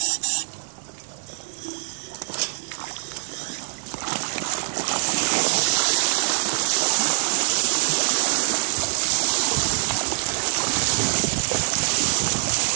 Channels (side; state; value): left; silent; digital silence